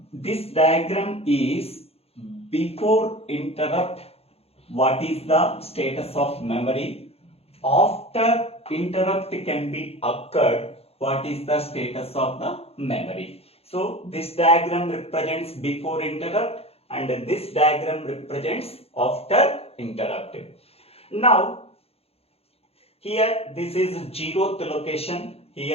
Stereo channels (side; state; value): right; late; 0.29 ms